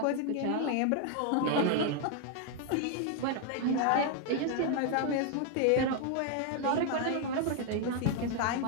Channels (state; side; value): different; both; correlation 0.00